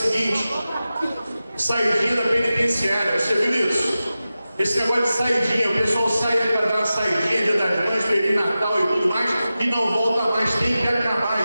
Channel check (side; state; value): both; inverted; correlation -0.94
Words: saidinha da penitenciária. Você viu isso? Esse negócio de saidinha, o pessoal sai para dar uma saidinha, Dia das Mães, Feliz Natal e tudo mais, e não volta mais. Tem que acabar